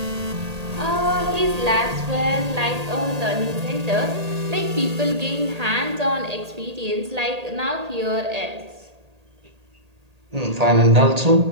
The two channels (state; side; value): late; left; 1.8 ms